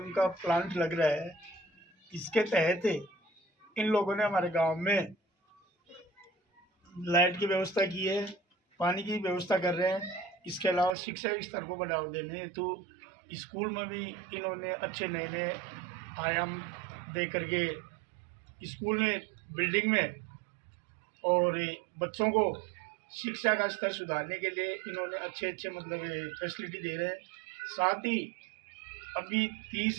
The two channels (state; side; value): drops out; left; at 11.0 s